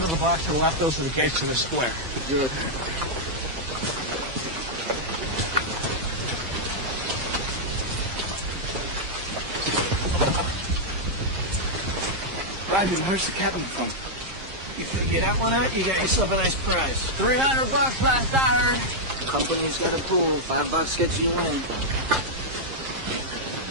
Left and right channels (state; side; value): late; left; 7.5 ms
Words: of the block to the left. Those are the gates to the square. Good. Roger, where's the captain from? You figure that one out, you got yourself a nice prize. $300 last I heard. Company's got a pool. $5 gets you in.